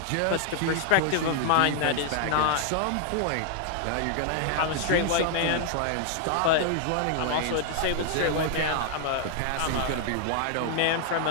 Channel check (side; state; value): both; different; correlation 0.00